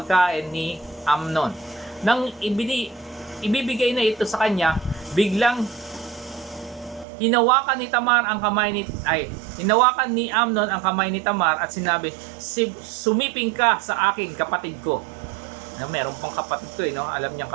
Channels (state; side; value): drops out; left; at 7.1 s